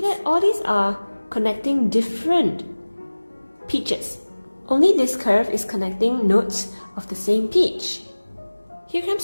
that all these are connecting different pitches. Only this curve is connecting notes of the same pitch. Here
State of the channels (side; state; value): both; inverted; correlation -1.00